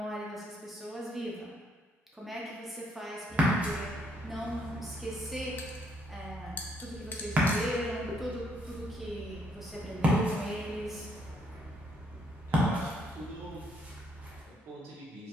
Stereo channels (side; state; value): both; normal; correlation 0.70